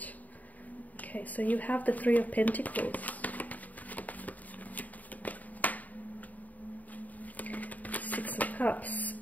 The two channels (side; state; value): right; late; 0.076 ms